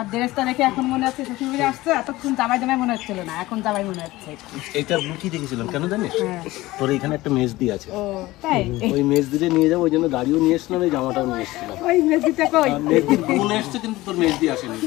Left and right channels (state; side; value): quieter; right; 18.5 dB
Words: ড্রেসটা দেখে এখন মনে হচ্ছে শ্বশুর বাড়ি আসছে। এতক্ষণ জামাই জামাই মনে হচ্ছিল না, এখন জামাই মনে হচ্ছে। এইটা লুচি দেখেছিলাম, কেন জানিস? তোর এখানে একটা মেজদি আছে, তাই ওই মেজদিতে নিয়ে যাবো, ওই জন্য গাড়িও নিয়ে এসছিলাম, এই জামাটাও নিয়ে এসছিলাম। ওই মেজদিটা কই? মেজদি বোন এসছে, কিন্তু তোর মেজদি আসেনি।